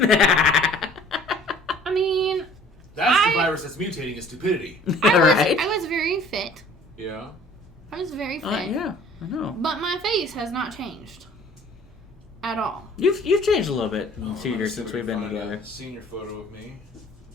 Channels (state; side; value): normal; both; correlation 0.51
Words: mean, That's the virus that's mutating is stupidity. Right? I was very fit. Yeah. I was very fit. Yeah, I know. But my face has not changed. At all. You've changed a little bit in Oh, 2 years since we've been together. A senior photo of me.